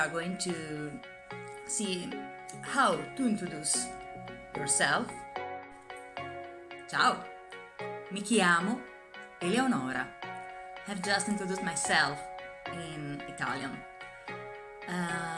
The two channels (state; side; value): identical; both; correlation 1.00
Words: going to see how to introduce yourself. Ciao, mi chiamo Eleonora. I've just introduced myself in Italian.